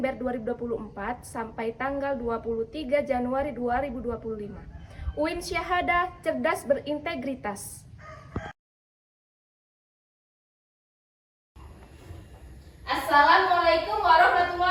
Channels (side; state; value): both; identical; correlation 1.00